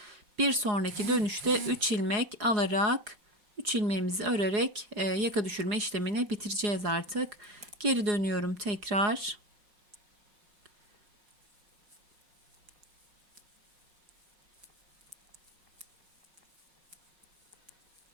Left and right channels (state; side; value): late; left; 4.8 ms